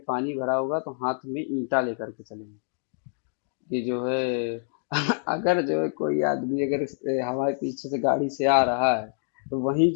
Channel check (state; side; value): silent; right; 56 dB below the other